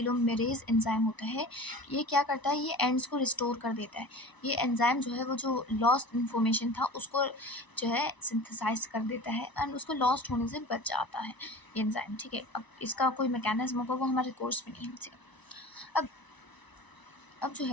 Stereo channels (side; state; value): right; late; 1.0 ms